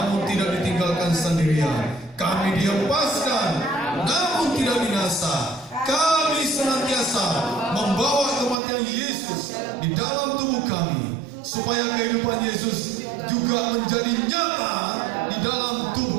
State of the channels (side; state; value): left; drops out; at 8.6 s